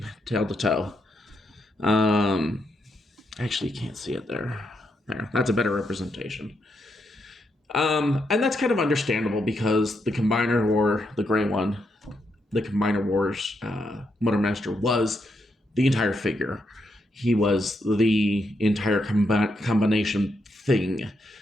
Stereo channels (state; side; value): normal; both; correlation 0.80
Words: tail to toe. Actually, you can't see it there. There, that's a better representation. And that's kind of understandable because the Combiner War, the gray one, the Combiner Wars Motormaster was the entire figure. He was the entire combination thing.